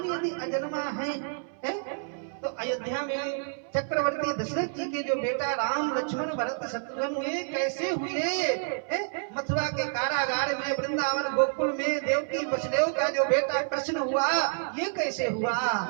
यदि अजन्मा है तो अयोध्या में चक्रवर्ती दशरथ जी के जो बेटा राम लक्ष्मण भरत शत्रुघ्न हुए कैसे हुए? मथुरा के कारागार में, वृंदावन गोकुल में देवकी वसुदेव का जो बेटा कृष्ण हुआ, ये कैसे हुआ?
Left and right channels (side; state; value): left; silent; 59 dB below the other